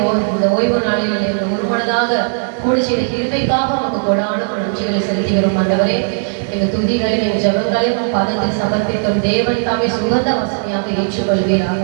ஓய்வு நாளில் எங்கள் ஒருமனதாக கூடி செய்த கிருபைக்காக உமக்கு கொடான நன்றிகளை செலுத்துகிறோம். ஆண்டவரே, எங்கள் துதிகளையும் எங்கள் ஜெபங்களையும் உம் பாதத்தில் சமர்ப்பிக்கும். தேவன் தாமே சுகந்த வாசனையாக ஏற்றுக்கொள்வீராக.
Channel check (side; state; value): left; silent; digital silence